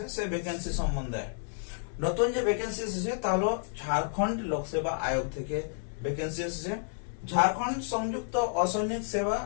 সেই ভ্যাকেন্সি সম্বন্ধে নতুন যে ভ্যাকেন্সি এসেছে তা হলো ঝাড়খণ্ড লোকসেবা আয়োগ থেকে ভ্যাকেন্সি এসেছে। ঝাড়খণ্ড সংযুক্ত অসৈনিক সেবা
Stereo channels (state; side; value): silent; right; digital silence